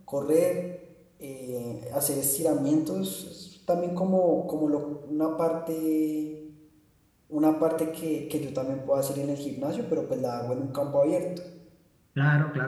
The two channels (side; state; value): both; identical; correlation 1.00